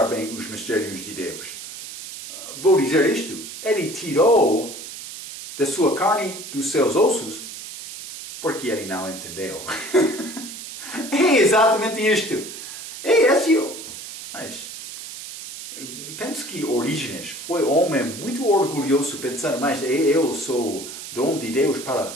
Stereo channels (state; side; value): noise; right; hiss, 11 dB below the sound